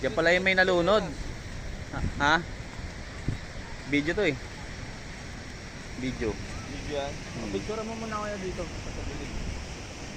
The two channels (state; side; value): identical; both; correlation 1.00